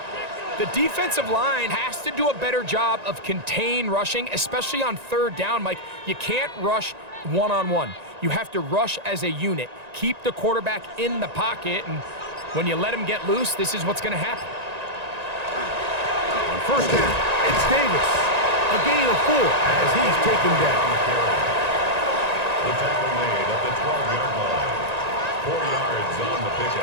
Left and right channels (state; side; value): late; left; 1.9 ms